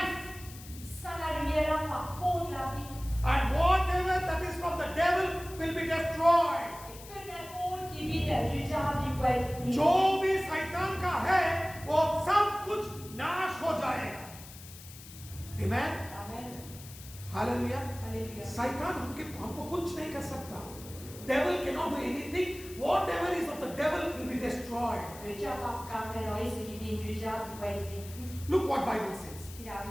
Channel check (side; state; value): left; noise; hiss, 17 dB below the sound